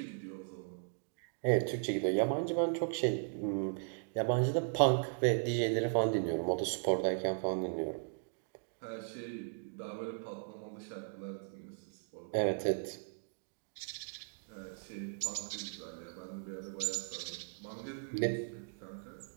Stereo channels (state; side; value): silent; left; digital silence